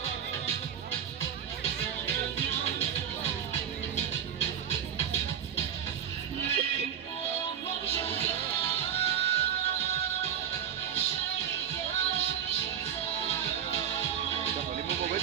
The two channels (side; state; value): left; quieter; 9.0 dB